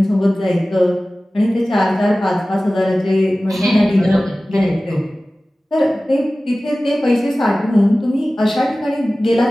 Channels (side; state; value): both; normal; correlation 0.97